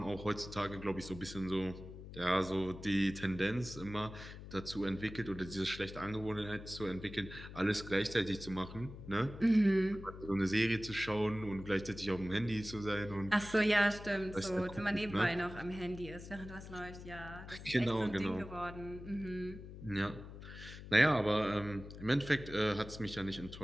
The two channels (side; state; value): left; noise; hum, 13 dB below the sound